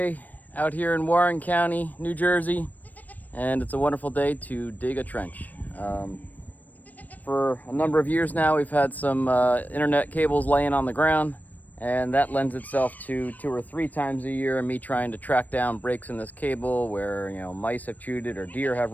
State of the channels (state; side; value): late; right; 0.081 ms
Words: out here in Warren County, New Jersey, and it's a wonderful day to dig a trench. For a number of years now, we've had some internet cables laying on the ground, and that lends itself to 2 or 3 times a year me trying to track down breaks in this cable where, mice have chewed it or deer have